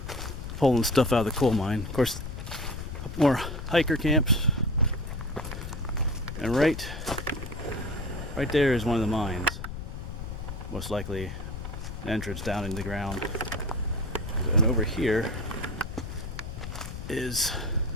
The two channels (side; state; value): left; noise; rumble, 7 dB below the sound